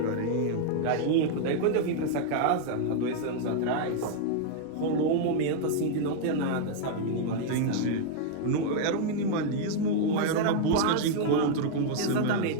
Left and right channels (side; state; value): both; different; correlation -0.01